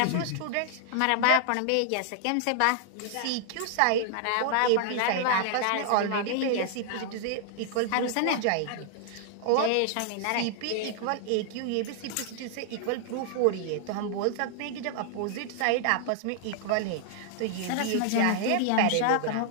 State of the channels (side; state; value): both; different; correlation -0.01